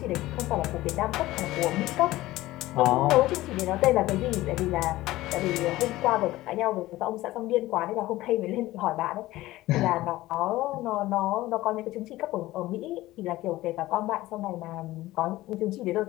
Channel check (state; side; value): quieter; right; 17.2 dB